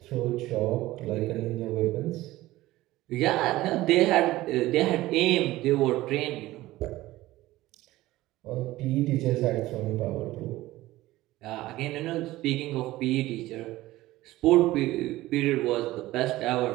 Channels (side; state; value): left; quieter; 17.1 dB